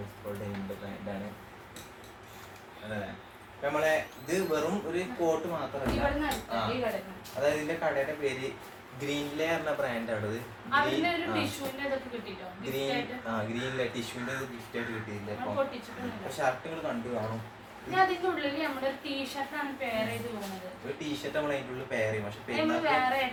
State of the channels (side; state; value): both; identical; correlation 1.00